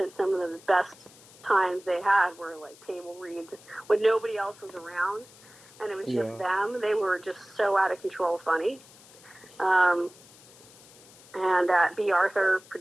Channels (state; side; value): noise; left; hiss, 23 dB below the sound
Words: some of the best times they had were like table reads when nobody else was around, and it was just them. They were just so out of control funny. And B. Arthur